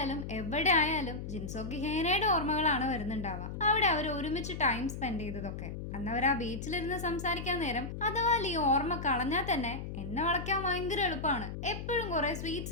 എവിടെ ആയാലും ജിൻസോക്ക് ഹേനയുടെ ഓർമ്മകളാണ് വരുന്നുണ്ടാവുക. അവിടെ അവർ ഒരുമിച്ച് ടൈം സ്പെൻഡ് ചെയ്തതൊക്കെ. അന്ന് അവർ ആ ബീച്ചിലിരുന്ന് സംസാരിക്കാൻ നേരം അഥവാ ഈ ഓർമ്മ കളഞ്ഞാൽ തന്നെ എന്നെ വളയ്ക്കാൻ ഭയങ്കര എളുപ്പമാണ്, എപ്പോഴും കുറെ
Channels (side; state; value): left; noise; hum, 7 dB below the sound